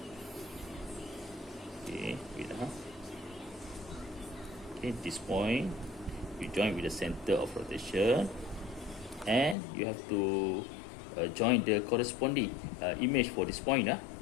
Okay, okay, this point you join with the center of rotation, and you have to join the corresponding image for this point,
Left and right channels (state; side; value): drops out; right; at 9.6 s